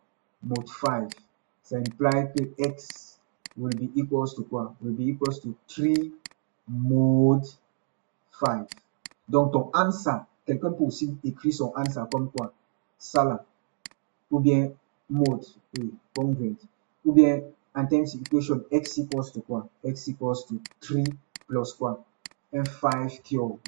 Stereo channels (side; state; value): left; silent; digital silence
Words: Mode 5. Ça implique que x will be equals to quoi? Will be equals to 3 mode 5. Donc ton answer, quelqu'un peut aussi écrire son answer comme quoi? Ça là. Ou bien mode, oui, congruent. Ou bien Intense equation, x equals to quoi? X equals to 3 plus quoi? Un 5 cube,